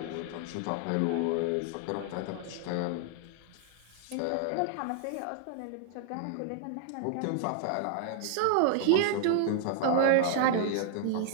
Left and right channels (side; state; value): both; different; correlation 0.00